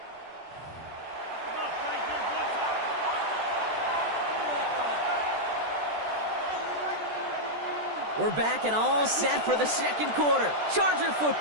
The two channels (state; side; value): late; left; 14 ms